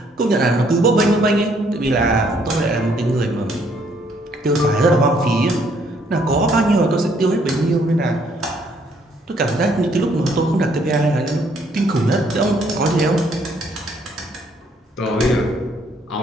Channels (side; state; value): both; normal; correlation 0.67